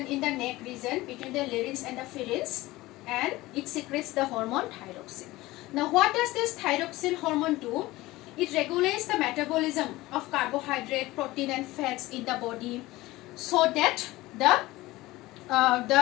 in the neck region between the larynx and the pharynx, and it secretes the hormone thyroxine. Now, what does this thyroxine hormone do? It regulates the metabolism of carbohydrate, protein and fats in the body, so that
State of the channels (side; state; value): right; quieter; 18.8 dB